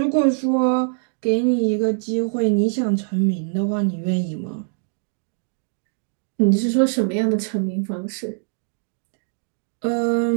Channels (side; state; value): left; silent; digital silence